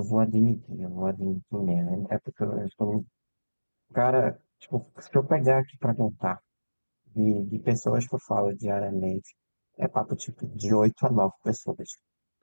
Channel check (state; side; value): inverted; both; correlation -1.00